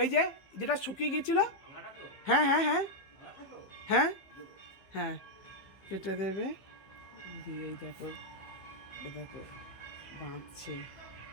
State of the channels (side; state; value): right; late; 15 ms